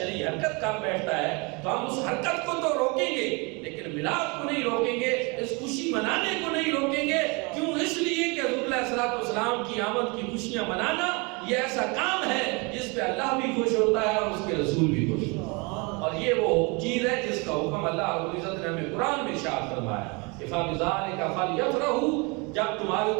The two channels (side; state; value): left; quieter; 29.3 dB